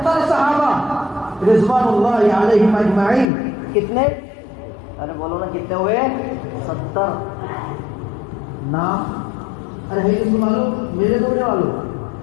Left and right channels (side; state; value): right; drops out; at 3.3 s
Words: صحابہ رضوان اللہ علیہم اجمعین، کتنے؟ ارے بولو نا کتنے ہوئے؟ 70 نام، ارے ہے کس کو معلوم؟ میرے دوڑنے والوں،